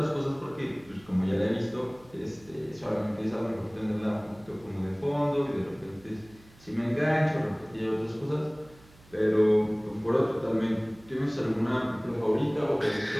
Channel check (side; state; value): right; noise; hum, 26 dB below the sound